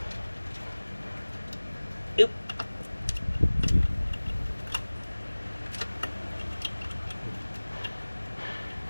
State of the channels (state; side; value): inverted; both; correlation -1.00